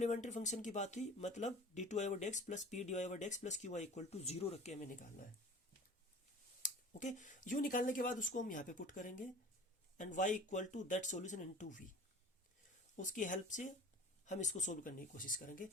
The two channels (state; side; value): normal; both; correlation 0.42